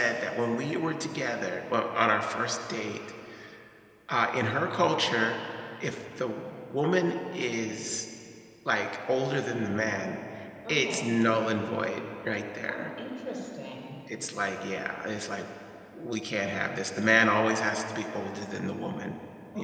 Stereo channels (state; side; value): identical; both; correlation 1.00